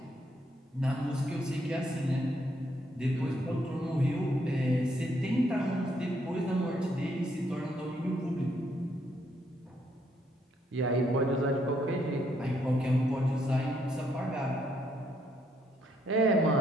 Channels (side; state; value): both; normal; correlation 0.73